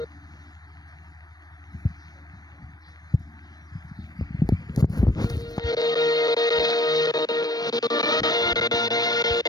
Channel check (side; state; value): right; late; 0.19 ms